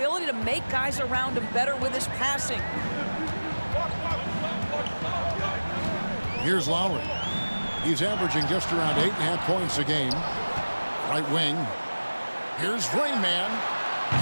to make guys around him better with his passing. Here's Lowry. He's averaging just around 8.5 points a game. Right wing. Here's Rain Man.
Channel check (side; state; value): both; inverted; correlation -1.00